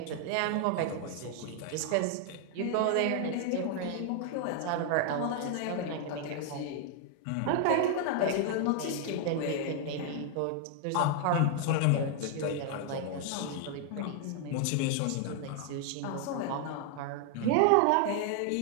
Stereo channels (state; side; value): different; both; correlation 0.00